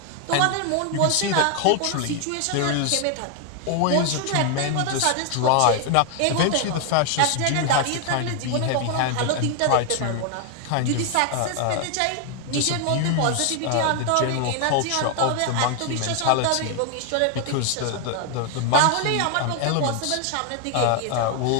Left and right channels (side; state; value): both; different; correlation 0.00